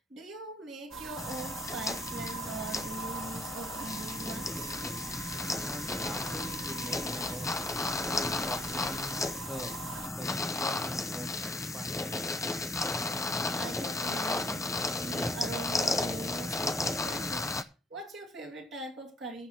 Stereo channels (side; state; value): both; normal; correlation 0.61